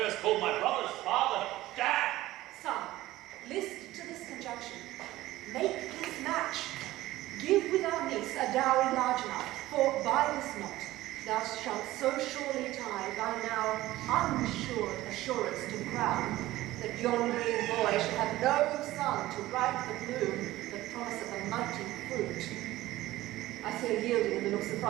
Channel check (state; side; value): quieter; left; 16.6 dB